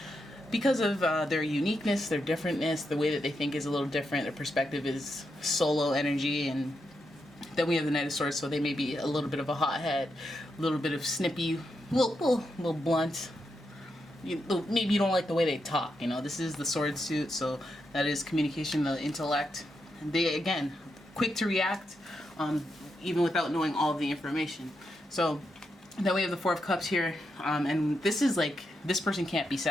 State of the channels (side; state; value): both; normal; correlation 0.84